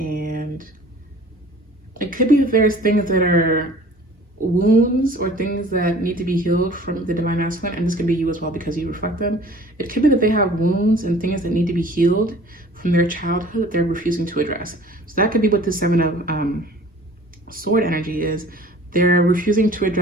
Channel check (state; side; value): normal; both; correlation 0.48